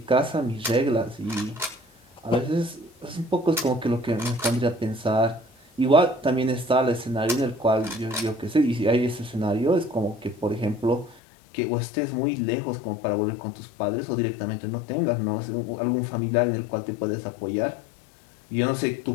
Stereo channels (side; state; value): right; drops out; at 11.2 s